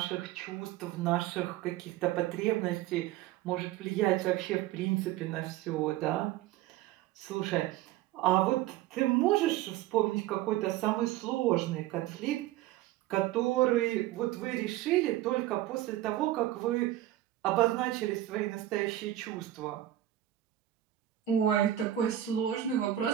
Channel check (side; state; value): left; quieter; 13.9 dB